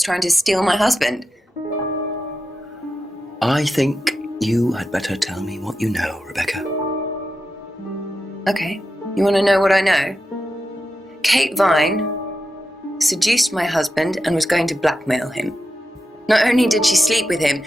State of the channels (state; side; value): normal; both; correlation 0.89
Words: trying to steal my husband? I think you had better tell me what you know, Rebecca. Okay. You want to know what I know? Kate Vine seduced my husband and was going to blackmail him. Not only did she sleep with him,